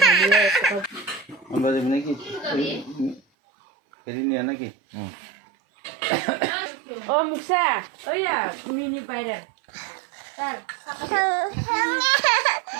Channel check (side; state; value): left; drops out; at 3.2 s